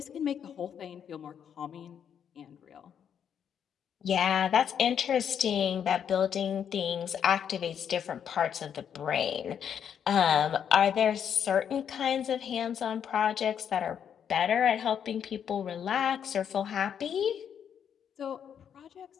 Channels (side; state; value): right; quieter; 8.4 dB